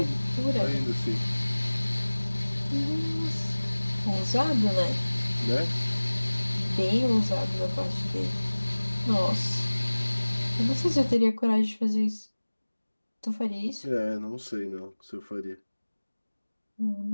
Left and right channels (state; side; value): inverted; both; correlation -1.00